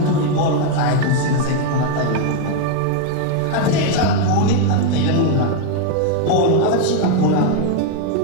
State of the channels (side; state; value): both; different; correlation 0.01